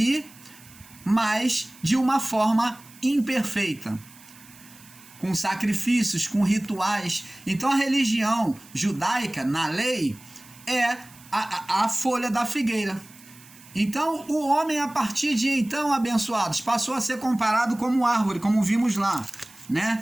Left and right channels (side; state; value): right; noise; hiss, 23 dB below the sound